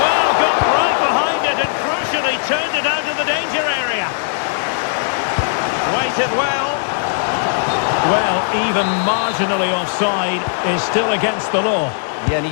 Well, even marginally offside is still against the law. Yeah, and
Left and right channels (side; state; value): right; silent; digital silence